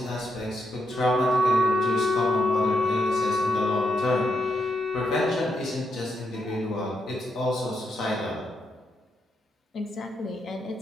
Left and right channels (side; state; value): both; normal; correlation 0.80